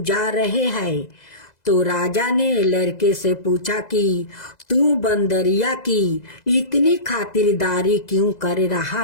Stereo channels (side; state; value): right; late; 2.0 ms